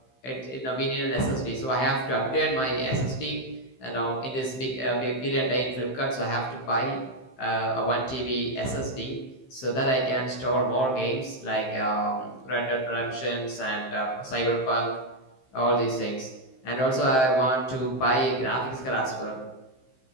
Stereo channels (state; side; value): late; right; 15 ms